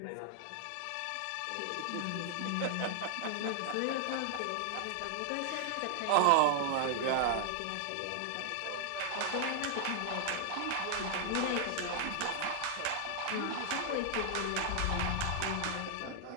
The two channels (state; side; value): different; both; correlation 0.00